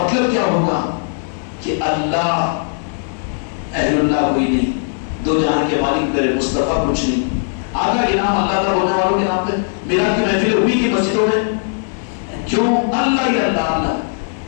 کیا ہوگا کہ اللہ اہل اللہ کوئی نہیں، دو جہاں کے مالک میرے مصطفیٰ کچھ نہیں. آدھا انعام اللہ کا بولنے والوں کے نام پہ میرا کی محفل ہوئی کی مسجدوں میں. کیوں؟ اللہ ہی اللہ اللہ.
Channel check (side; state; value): right; silent; digital silence